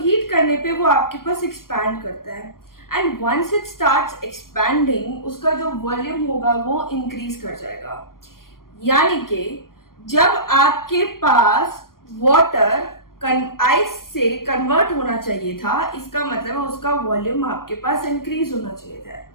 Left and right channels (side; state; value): right; late; 0.92 ms